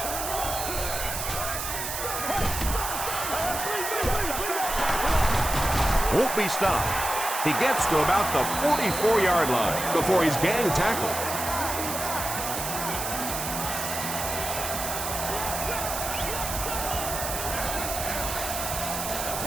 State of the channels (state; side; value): noise; right; hiss, 4 dB below the sound